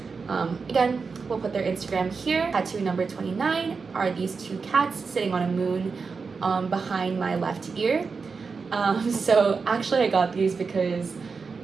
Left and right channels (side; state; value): left; quieter; 4.9 dB